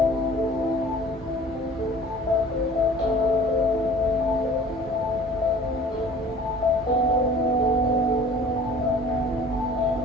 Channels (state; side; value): normal; both; correlation 0.47